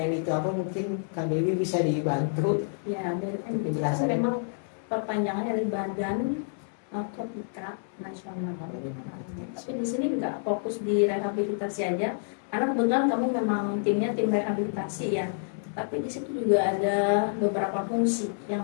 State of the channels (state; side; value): silent; right; 59 dB below the other